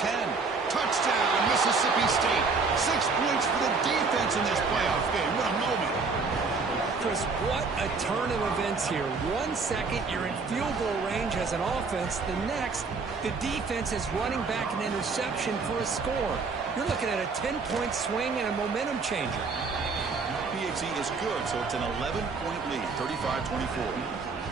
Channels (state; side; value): quieter; left; 4.5 dB